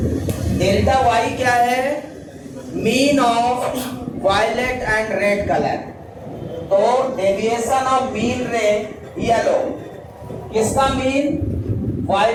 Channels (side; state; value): both; identical; correlation 1.00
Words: Delta Y क्या है? Mean of violet and red colour. तो deviation of mean ray yellow, किसका मीन?